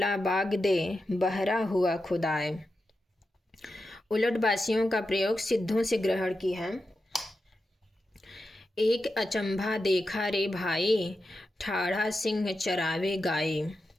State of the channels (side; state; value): both; normal; correlation 0.90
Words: बाग दे, बहरा हुआ खुदाए। उलटबासियों का प्रयोग सिद्धों से ग्रहण की है। एक अचंभा देखा रे भाई, ठाढ़ा सिंह चरावे गाय,